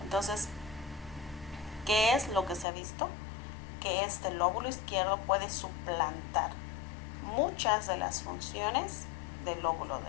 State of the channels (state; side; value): drops out; right; at 2.7 s